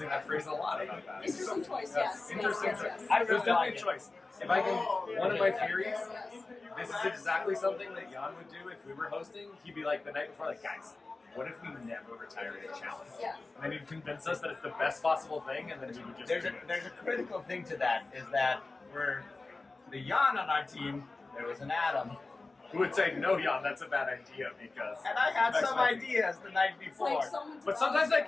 that phrase a lot about that. Interesting choice, yes. Interesting yes. choice. It was definitely a choice. If I can, one of my theories, this is exactly something that Jan would do if we were hosting. He'd be the night before, guys, what if we never retired a challenge? Yeah. And then he'd convince us that it's the best possible thing, and then we would just There's a critical thing to that, is that for the Jan on our team, there was an Adam. Who would say, no, Jan, that's a bad idea, because... And I had some ideas the night before. But sometimes I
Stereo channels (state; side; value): quieter; right; 3.5 dB